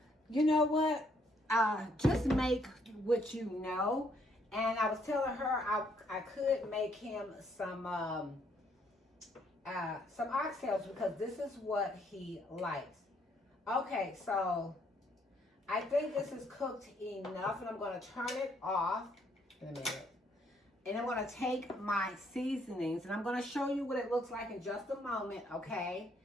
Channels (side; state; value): both; normal; correlation 0.69